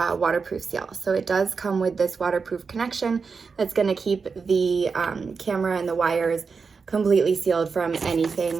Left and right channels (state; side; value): quieter; left; 5.1 dB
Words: waterproof seal. So it does come with this waterproof connection that's gonna keep the camera and the wires completely sealed from